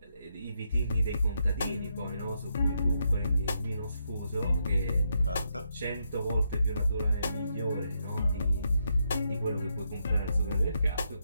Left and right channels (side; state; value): both; inverted; correlation -0.79